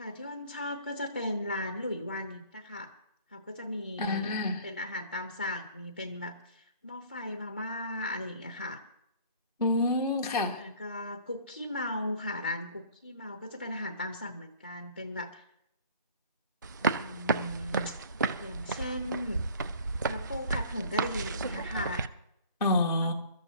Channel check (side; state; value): both; inverted; correlation -0.50